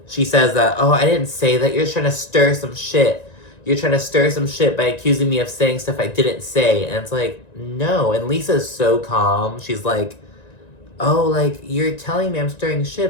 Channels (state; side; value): late; right; 1.9 ms